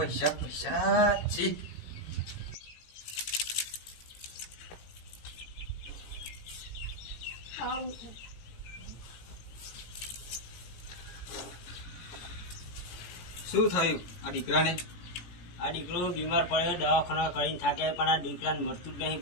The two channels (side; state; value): right; late; 17 ms